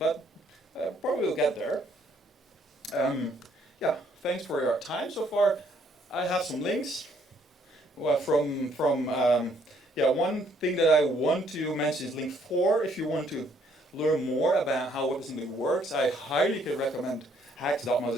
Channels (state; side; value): normal; both; correlation 0.66